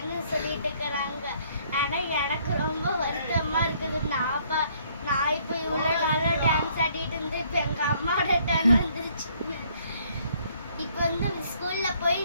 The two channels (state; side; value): inverted; both; correlation -0.64